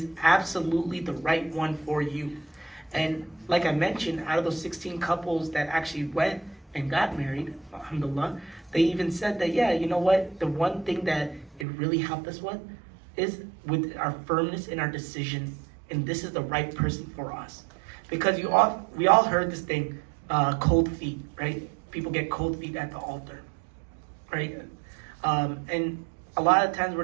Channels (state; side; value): drops out; left; at 11.7 s